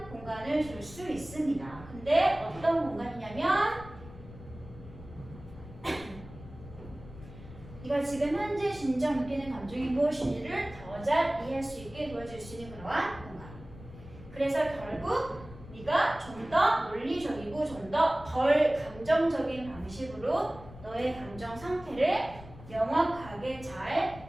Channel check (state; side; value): noise; left; rumble, 16 dB below the sound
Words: 공간을 줄 수 있습니다. 근데 어떤 공간이냐면 네가 지금 현재 진정 느끼는 감정이 무엇인지를 더 잘 이해할 수 있게 도와줄 수 있는 그러한 공간. 그래서 결국 네가 좀 더 논리적이고 좀 더 덜 감정적인 방식으로 너의 감정 상태를 명확하게